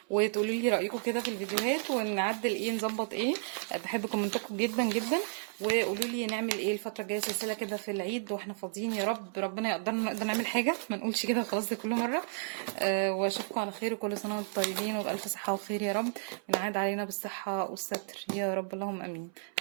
وتقولوا لي رايكم كده في الفيديوهات ونعدل ايه نظبط ايه. بحب كومنتاتكم جدا جدا. وقولوا لي نعمل ايه الفتره الجايه، سلسله كده في العيد واحنا فاضيين، يا رب ربنا يقدرنا نقدر نعمل حاجه، ما نقولش كده وخلاص زي كل مره. واشوفكم على خير، وكل سنه وانتم طيبين وبالف صحه وخير يا رب. ونعاد علينا بالصحه والستر يا رب، اللهم امين.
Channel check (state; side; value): silent; left; 56 dB below the other